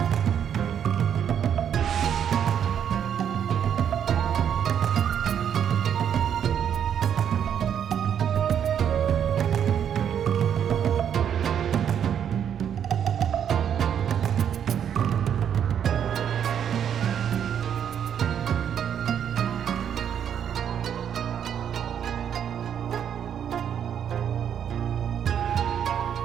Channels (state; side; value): quieter; left; 8.8 dB